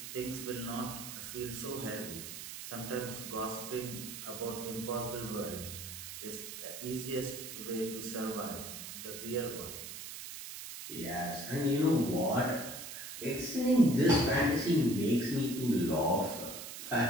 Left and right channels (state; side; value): noise; right; hiss, 9 dB below the sound